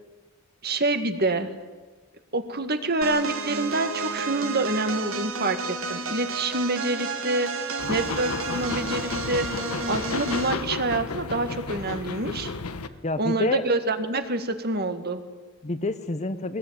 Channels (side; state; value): both; normal; correlation 0.03